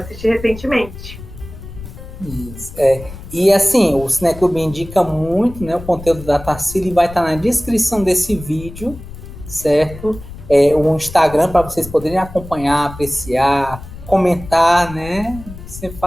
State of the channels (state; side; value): noise; left; rumble, 14 dB below the sound